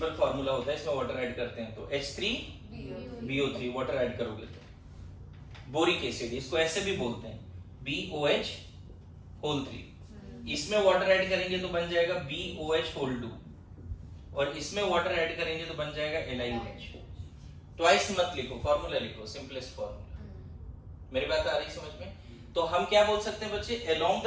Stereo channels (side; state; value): both; identical; correlation 1.00